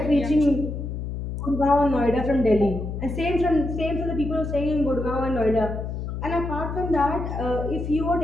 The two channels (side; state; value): left; noise; hum, 5 dB below the sound